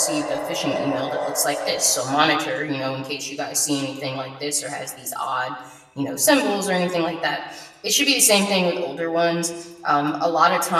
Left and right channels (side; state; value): both; identical; correlation 1.00